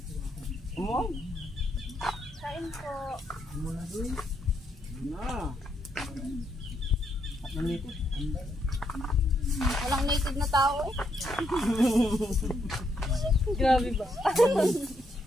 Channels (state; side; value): normal; both; correlation 0.77